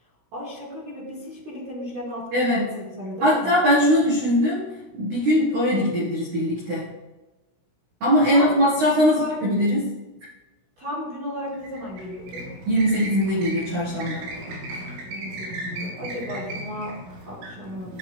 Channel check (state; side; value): late; left; 16 ms